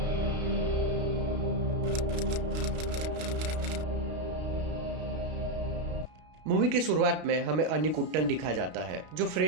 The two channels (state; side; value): late; left; 32 ms